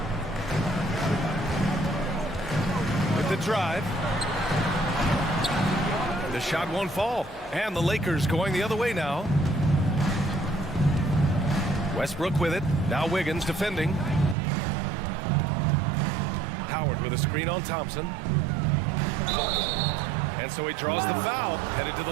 With the drive. The shot won't fall. And the Lakers going the other way now. Westbrook with it. Now Wiggins defending. Howard with a screen on Thompson. And so he draws the foul. Headed to the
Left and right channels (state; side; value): drops out; left; at 14.4 s